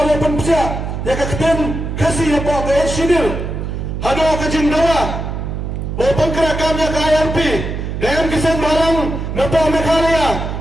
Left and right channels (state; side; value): noise; right; hum, 4 dB below the sound